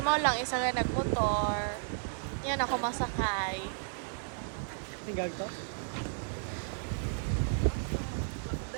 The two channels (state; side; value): silent; left; digital silence